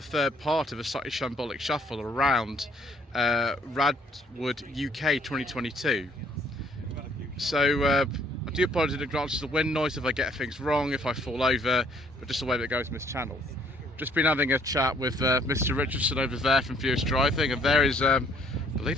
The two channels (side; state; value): both; normal; correlation 0.63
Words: part of a Slightly Shambolic Shuffle around RADwood UK 2022. So, I do apologise in advance for the wind noise if I get things wrong, if I fall over, but just the way that goes in this channel. Just been having a chat with Mr Richardson over there from furiousdriving, and there is, I believe